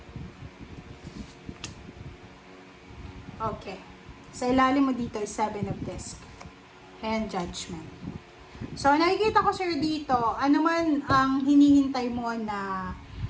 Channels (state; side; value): identical; both; correlation 1.00